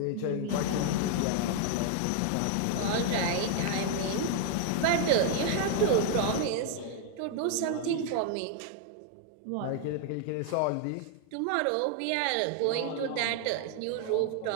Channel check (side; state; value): both; different; correlation 0.00